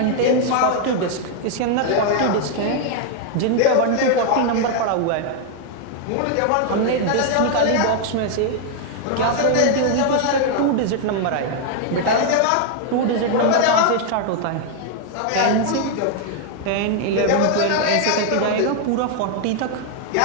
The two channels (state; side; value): different; both; correlation 0.00